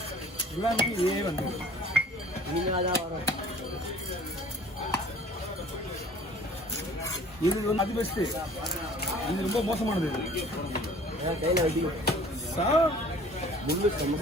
எல்லாமே இதே வந்து இனிமேல் தான் வரும். இது வந்து அது பெஸ்ட்டு. இது ரொம்ப மோசமானது. கையில் வெட்டி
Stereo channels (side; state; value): both; normal; correlation 0.49